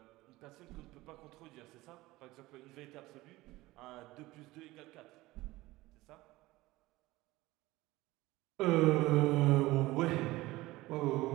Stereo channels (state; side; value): quieter; left; 19.0 dB